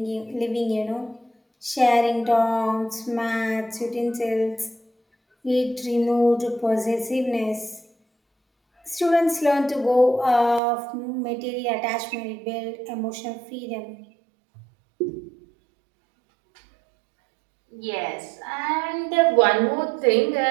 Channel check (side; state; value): left; drops out; at 10.6 s